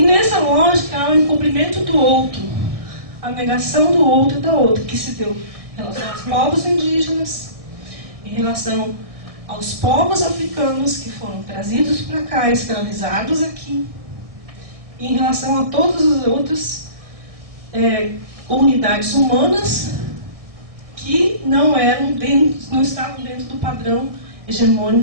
nessa lógica há o encobrimento do outro, a negação do outro e da outra, que se deu em relação aos povos indígenas, em relação aos povos africanos que foram trazidos para cá, escravizados aqui, e em relação a todas as outras comunidades humanas que não estavam dentro do padrão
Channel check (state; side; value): late; left; 1.7 ms